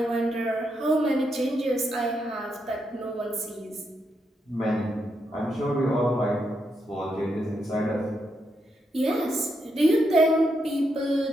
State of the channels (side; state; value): both; normal; correlation 0.81